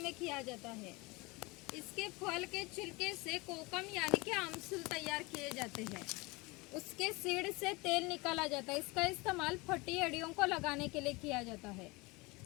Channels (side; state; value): right; quieter; 24.7 dB